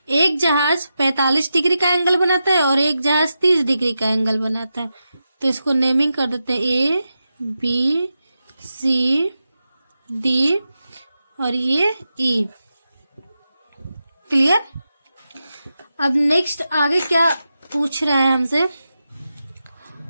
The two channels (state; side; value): inverted; both; correlation -0.90